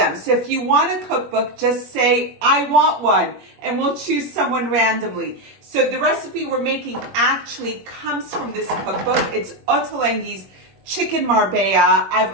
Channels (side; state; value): left; late; 21 ms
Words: So if you want a cookbook, just say, I want one, and we'll choose someone randomly. So the recipe we're making actually comes from this cookbook. It's Ottolenghi's Chicken Marbella.